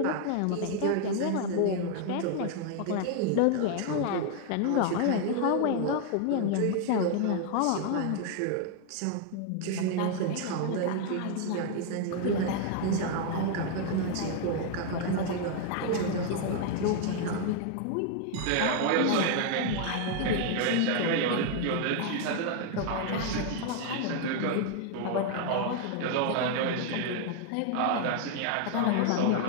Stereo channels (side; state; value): both; different; correlation 0.00